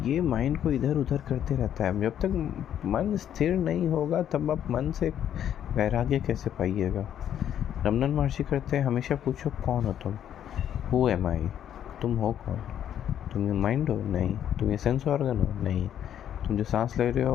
ये माइंड को इधर उधर करते रहता है. जब तक मन स्थिर नहीं होगा तब आप मन से वैराग्य कैसे पाइएगा. रमन महर्षि करते हैं, हमेशा पूछो कौन हो तुम. हु एम आई, तुम हो कौन. तुम ये माइंड हो? नहीं. तुम ये सेंस ऑर्गन हो? नहीं. तुम जो सांस ले रहे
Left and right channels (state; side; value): quieter; right; 10.1 dB